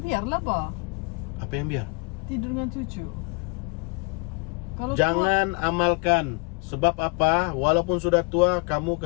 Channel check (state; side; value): quieter; right; 30.7 dB